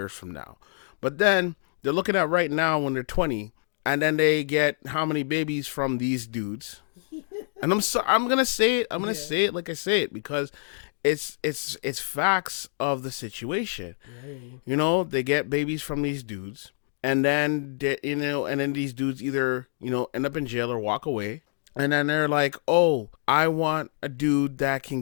from now. But then they're looking at right now when they're 20, and then they get how many babies from these dudes. And I'm gonna say it. I'm gonna say it like I say it because it's facts of the situation. Yeah. They get babies from these dudes, and then these dudes either end up in jail or walk away, and then they're like, oh, I want a dude that can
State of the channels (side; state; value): right; silent; digital silence